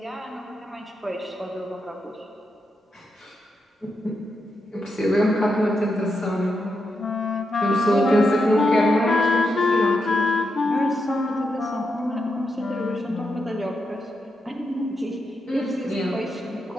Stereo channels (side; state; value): both; normal; correlation 0.85